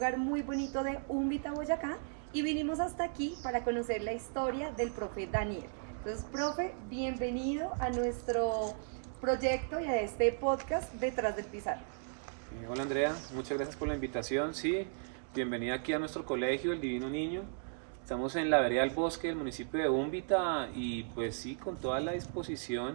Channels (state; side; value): silent; left; digital silence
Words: muy bonito de Úmbita, Boyacá, y vinimos hasta aquí para conocer la historia del profe Daniel. Entonces, profe, bienvenido a nuestro proyecto y a este podcast Detrás del Pizarrón. Hola Andrea, muchas gracias por la invitación. Sí, bienvenida aquí a nuestro colegio, El Divino Niño. Estamos en la vereda del Bosque del municipio de Úmbita y pues sí, con toda la